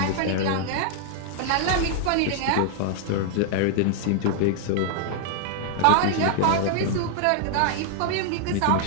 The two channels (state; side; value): different; both; correlation 0.00